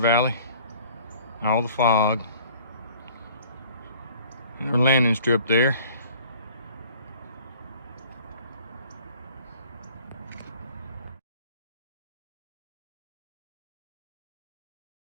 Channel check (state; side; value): inverted; both; correlation -0.51